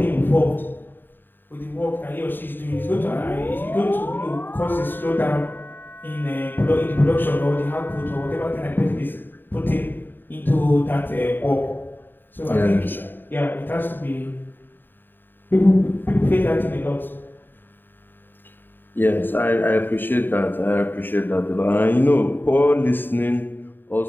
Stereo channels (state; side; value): late; right; 0.094 ms